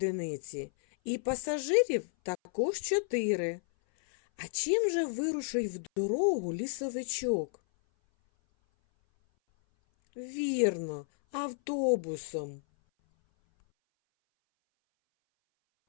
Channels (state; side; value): silent; right; 57 dB below the other